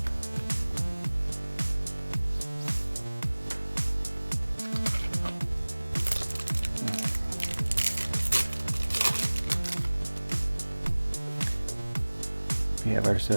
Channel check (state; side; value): inverted; both; correlation -1.00